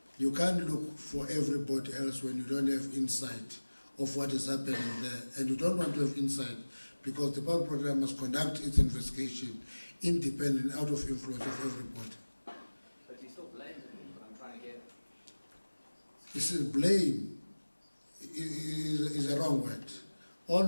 you can't look for everybody else when you don't have insight of what is happening there. And you don't want to have insight because the public program must conduct its investigation independent, out of influence of everybody. But you still blame him, but I'm trying to get... You see, blame is a wrong word. All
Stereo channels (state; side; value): inverted; both; correlation -1.00